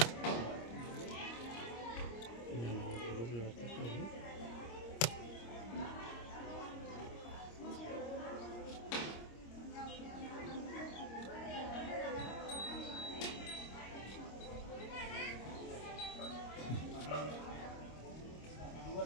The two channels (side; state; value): right; late; 26 ms